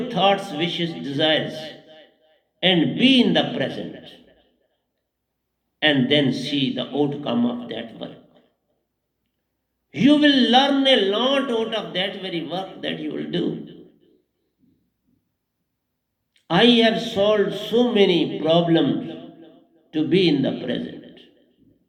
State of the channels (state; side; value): identical; both; correlation 1.00